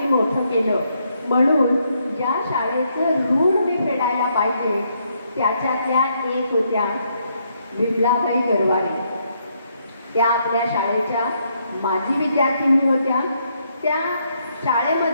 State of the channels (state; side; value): inverted; both; correlation -0.75